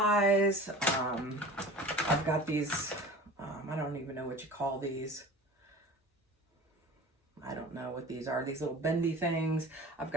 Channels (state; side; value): normal; both; correlation 0.39